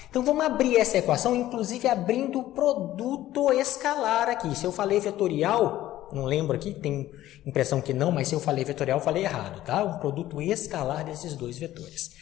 Então, vamos abrir essa equação, inclusive abrindo o produto escalar aqui. Se eu falei vetorial, não lembro aqui, tem impressão que não, mas se eu falei vetorial, eu falei errado, tá? Um produto escalar desses dois vetores.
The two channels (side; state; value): right; quieter; 14.3 dB